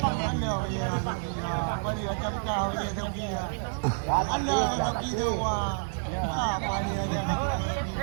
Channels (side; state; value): left; silent; digital silence